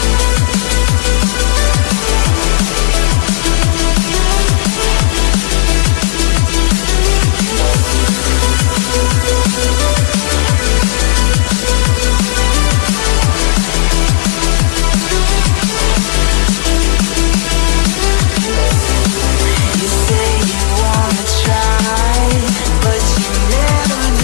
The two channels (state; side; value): silent; right; digital silence